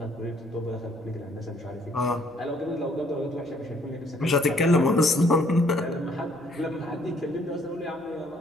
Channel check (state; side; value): normal; both; correlation 0.64